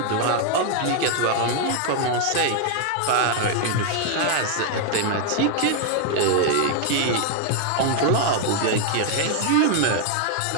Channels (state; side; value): different; both; correlation 0.00